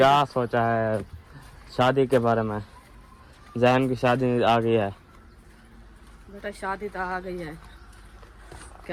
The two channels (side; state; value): both; identical; correlation 1.00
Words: सोचा है शादी के बारे में? जैन की शादी आ गई है। बेटा शादी तो आ गई है,